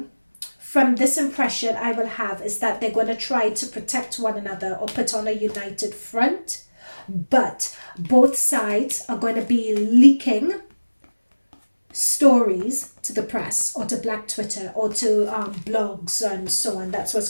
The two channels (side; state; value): both; inverted; correlation -1.00